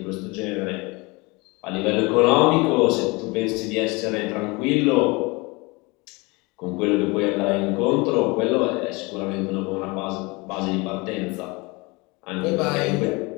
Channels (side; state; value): right; quieter; 25.8 dB